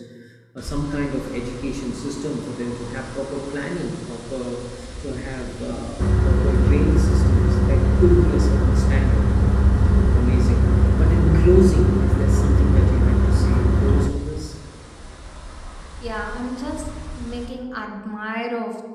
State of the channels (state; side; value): identical; both; correlation 1.00